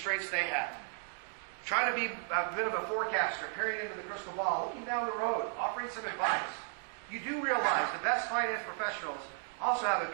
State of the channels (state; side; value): silent; left; 55 dB below the other